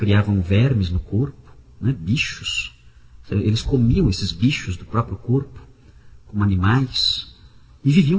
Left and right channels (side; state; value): both; identical; correlation 1.00